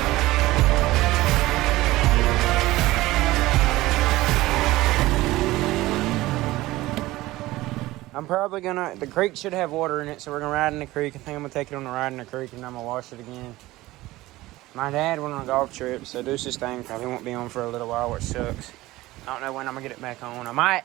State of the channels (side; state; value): left; quieter; 18.0 dB